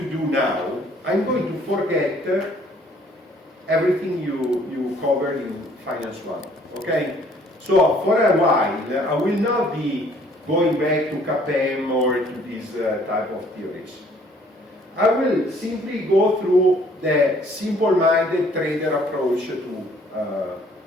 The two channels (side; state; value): both; normal; correlation 0.59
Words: do now, I'm going to forget everything you covered in Finance 1, okay? So, for a while, I will not be going back to CAPM or to these type of theories. I will simply go through the simple-minded trader approach to